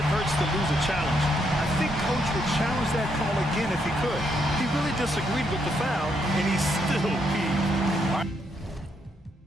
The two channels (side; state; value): both; normal; correlation 0.76